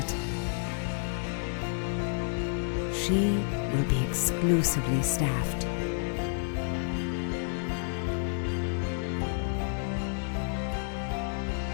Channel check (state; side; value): silent; right; 58 dB below the other